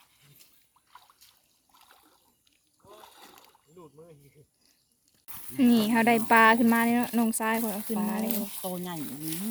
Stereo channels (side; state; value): both; identical; correlation 1.00